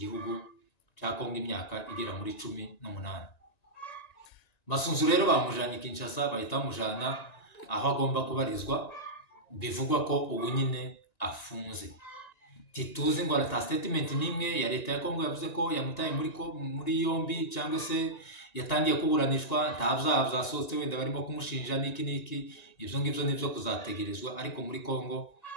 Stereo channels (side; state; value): right; late; 1.9 ms